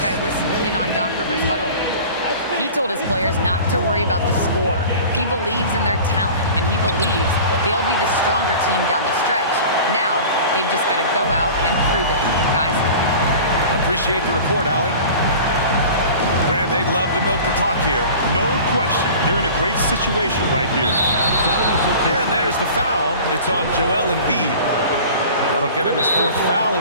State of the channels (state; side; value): inverted; both; correlation -0.40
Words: I listened in on Doc Rivers' huddle. He told his players not to worry about the score. He believes in their talent, and he believes they'll be the stronger team down the stretch. Now, they've just got to go out and prove it, guys. Appreciate the report, Allie. Grant, they'd love to milk the clock here. No question. They're in a great situation right here. And there's the foul. It's on Joel Embiid. That'll get him his 4th foul